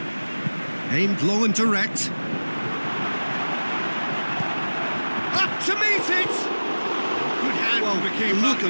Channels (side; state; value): both; inverted; correlation -1.00